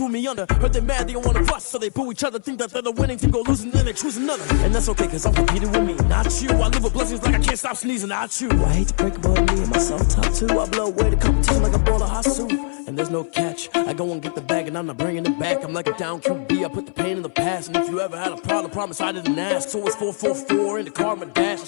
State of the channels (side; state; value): right; silent; 65 dB below the other